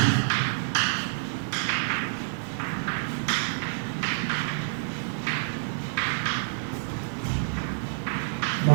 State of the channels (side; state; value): left; silent; digital silence